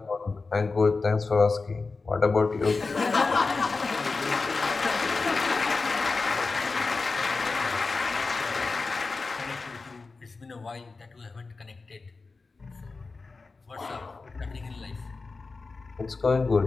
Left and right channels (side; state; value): right; quieter; 4.0 dB